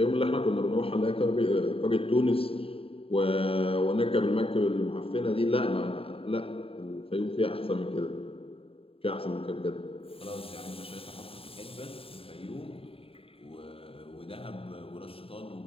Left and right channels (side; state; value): right; late; 0.27 ms